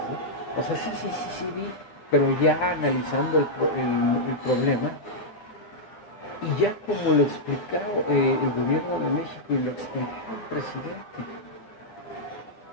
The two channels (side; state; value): right; late; 10 ms